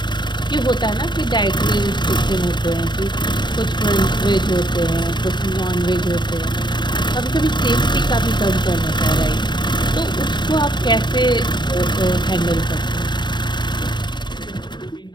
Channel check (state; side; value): late; right; 0.22 ms